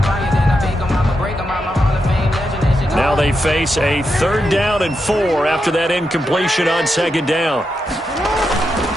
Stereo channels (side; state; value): both; normal; correlation 0.85